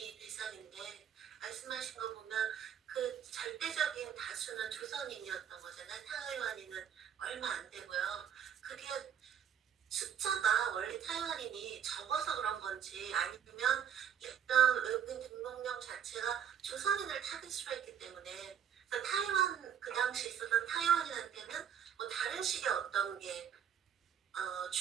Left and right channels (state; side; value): quieter; left; 8.5 dB